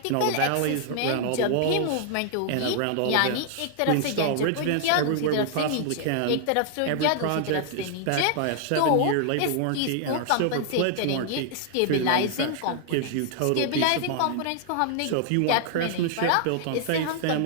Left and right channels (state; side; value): different; both; correlation -0.01